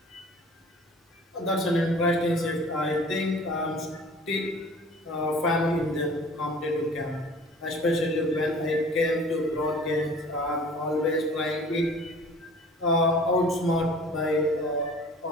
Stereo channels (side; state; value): both; normal; correlation 0.47